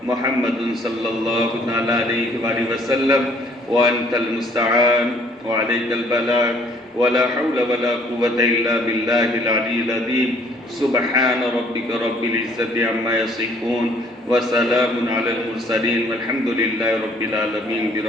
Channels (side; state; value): both; normal; correlation 0.60